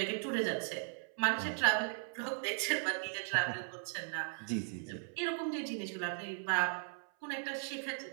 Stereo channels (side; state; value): left; silent; 53 dB below the other